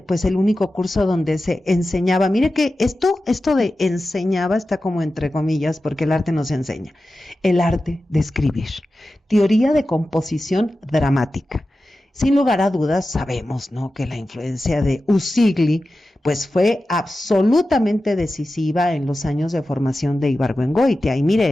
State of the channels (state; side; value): normal; both; correlation 0.93